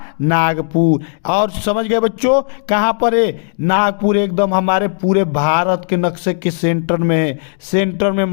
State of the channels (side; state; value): right; silent; 69 dB below the other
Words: नागपुर। और समझ गए बच्चों? कहां पर है? नागपुर एकदम हमारे पूरे भारत के नक्शे के सेंटर में है। सेंटर